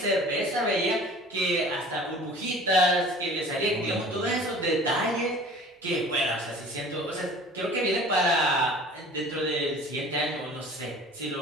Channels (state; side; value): normal; both; correlation 0.45